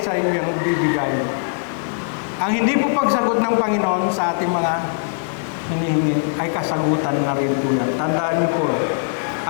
sa iyo yung bibigay. Ang hindi po pagsagot ng Panginoon sa ating mga hinihingi ay kasagutan na rin po yan. Tandaan niyo po,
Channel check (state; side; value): silent; right; digital silence